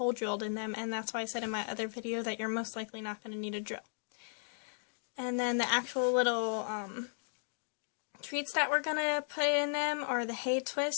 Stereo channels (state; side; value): silent; right; digital silence